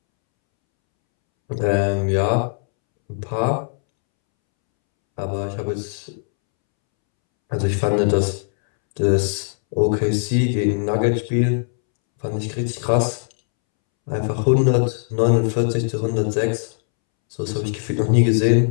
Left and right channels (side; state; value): right; silent; 66 dB below the other